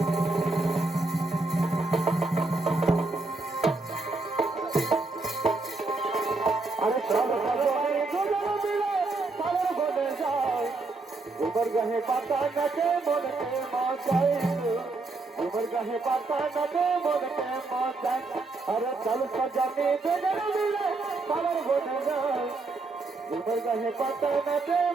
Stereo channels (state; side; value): quieter; left; 3.5 dB